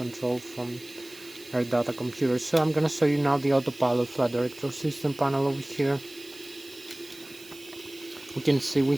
from air data computer. So I'm gonna show you now the autopilot flight director system panel over here. We can see we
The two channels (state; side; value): noise; right; hiss, 19 dB below the sound